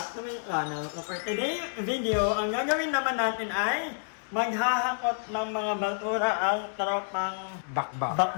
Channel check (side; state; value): right; silent; digital silence